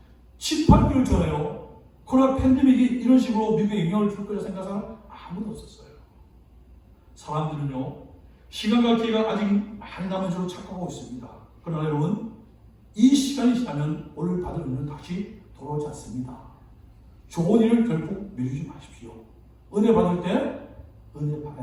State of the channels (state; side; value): identical; both; correlation 1.00